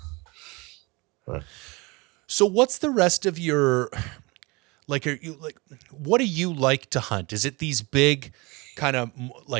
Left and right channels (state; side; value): quieter; left; 25.8 dB